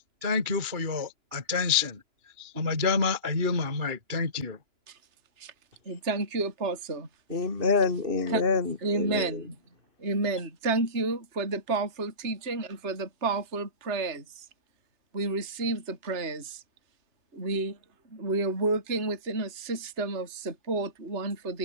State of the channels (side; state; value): left; late; 2.9 ms